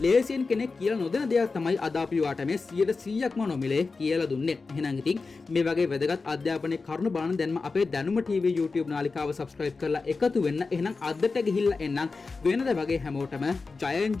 ලේසියෙන් කෙනෙක් කියලා නොදෙන දෙයක් තමයි අද අපි ඔයාට මේ 100%ක්ම නොමිලේ කියලා දුන්නේ. එහෙනම් ඉතින් මේ වගේ වැදගත් අධ්‍යාපනයේ කරුණු බලන දැන්ම අපේ දැනුම TV YouTube නාලිකාව subscribe කරලා එකතු වෙන්න. එහෙනම් අදට ගිහිල්ලා එන්නම් වෙනද වගේ හැමෝටම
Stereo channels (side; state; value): right; quieter; 4.1 dB